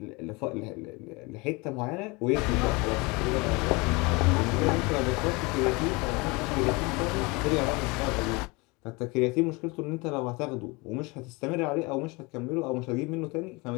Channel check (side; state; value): right; quieter; 26.2 dB